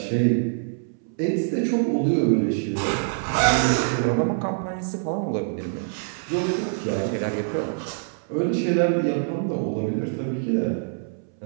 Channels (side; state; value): left; silent; 62 dB below the other